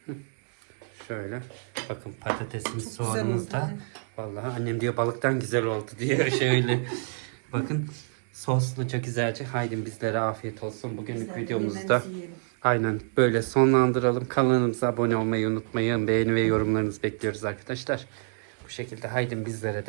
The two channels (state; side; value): silent; left; digital silence